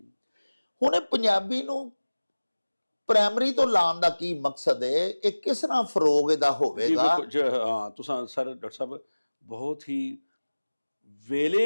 ਹੁਣ ਇਹ ਪੰਜਾਬੀ ਨੂੰ ਪ੍ਰਾਇਮਰੀ ਤੋਂ ਲਾਉਣ ਦਾ ਕੀ ਮਕਸਦ ਹੈ? ਇਹ ਕਿਸ ਤਰ੍ਹਾਂ ਫਰੋਗ ਇਹਦਾ ਹੋਵੇਗਾ? ਹਾਂ ਤੁਸੀਂ ਸਰ ਡਾਕਟਰ ਸਾਹਿਬ ਬਹੁਤ ਹੀ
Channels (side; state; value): both; inverted; correlation -1.00